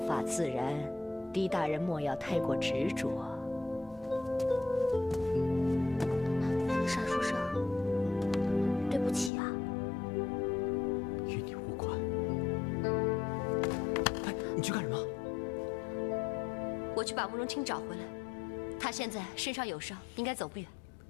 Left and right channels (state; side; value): drops out; right; at 9.3 s